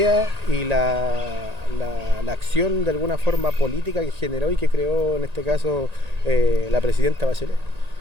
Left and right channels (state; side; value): late; left; 1.8 ms